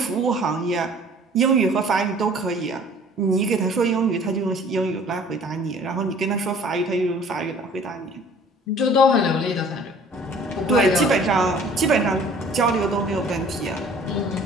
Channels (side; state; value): both; normal; correlation 0.51